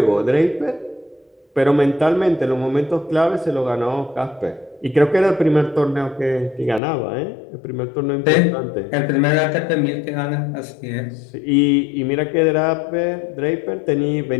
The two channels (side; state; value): right; drops out; at 6.8 s